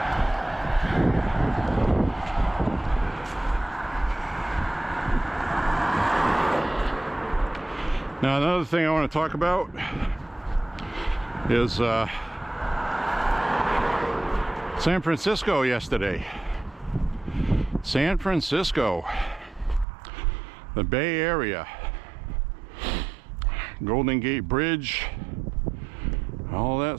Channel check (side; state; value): left; drops out; at 19.9 s